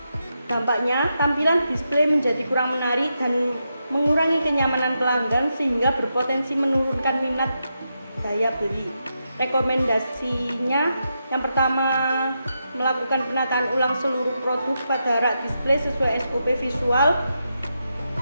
Dampaknya, tampilan display menjadi kurang menarik dan mengurangi kenyamanan pelanggan sehingga berpotensi menurunkan minat daya beli. Rekomendasinya yang pertama, melakukan penataan ulang seluruh produk pada rak display sesuai SOP visual.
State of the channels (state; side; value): inverted; both; correlation -0.85